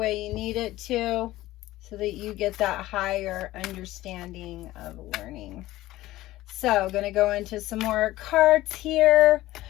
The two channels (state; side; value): quieter; right; 16.6 dB